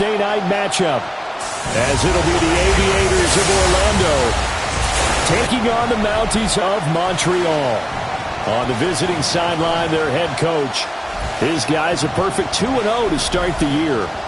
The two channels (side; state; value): both; identical; correlation 1.00